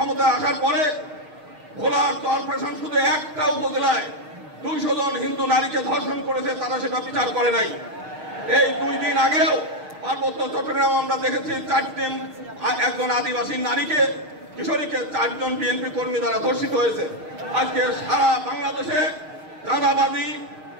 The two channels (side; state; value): left; late; 6.5 ms